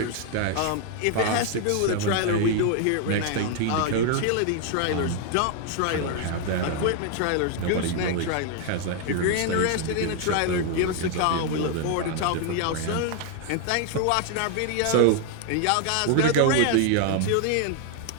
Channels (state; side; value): different; both; correlation 0.00